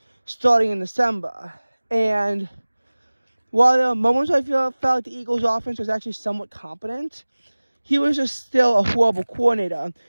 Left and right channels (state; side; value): inverted; both; correlation -1.00